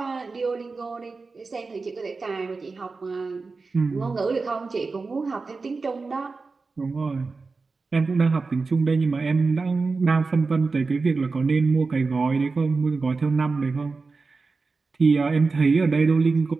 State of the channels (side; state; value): left; quieter; 4.1 dB